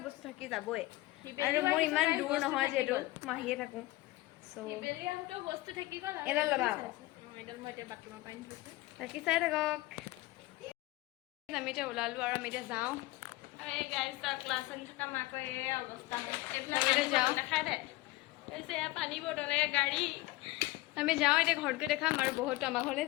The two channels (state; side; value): quieter; right; 19.6 dB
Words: বস্তু থাকি যাবই আৰু মোৰ ইমান দূৰ নহয় যিহেতু মই আহিয়ে থাকোঁ বস্তু থাকি গ'ল এডাল ল'বা আকৌ এডাল মই এতিয়া বাথৰুমৰ পৰা আনি বাকী চাই থাকক আমি এতিয়া ওলালোঁ আৰু আমি এতিয়া যাওঁ আৰু এই গাড়ী ক্লাছ আনি থকা মাকৰ এই অৱস্থা আমি এতিয়া যাওঁ দেখাই দে কৈছে এয়া পানী বটলে গাড়ী আমি যাওঁ এতিয়া ঘৰত গৈ দেখাম আৰু বহুতো আমাৰ ঘৰলৈ